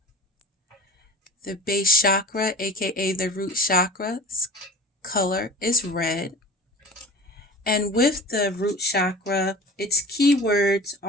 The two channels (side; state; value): both; normal; correlation 0.37